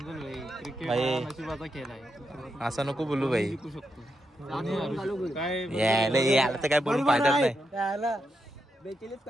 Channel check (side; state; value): both; normal; correlation 0.84